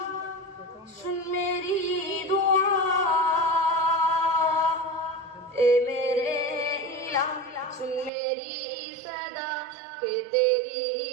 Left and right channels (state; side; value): drops out; left; at 8.1 s